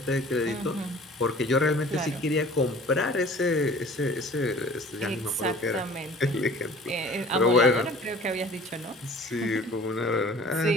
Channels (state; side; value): normal; both; correlation 0.47